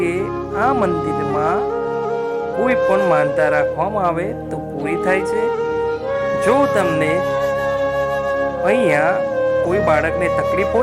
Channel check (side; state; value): both; identical; correlation 1.00